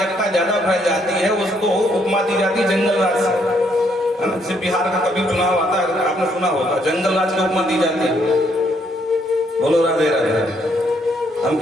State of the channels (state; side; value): normal; both; correlation 0.71